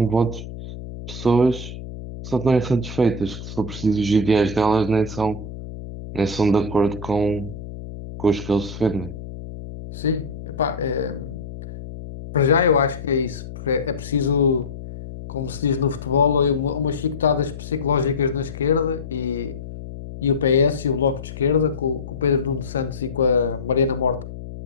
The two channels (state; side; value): noise; left; hum, 11 dB below the sound